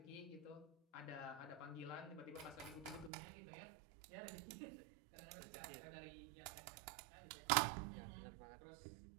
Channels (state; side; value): drops out; left; at 3.1 s